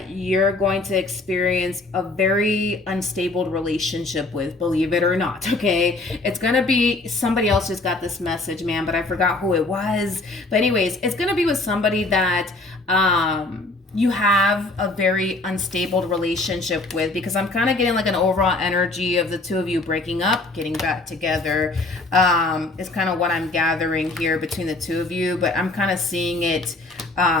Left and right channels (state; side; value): quieter; right; 3.0 dB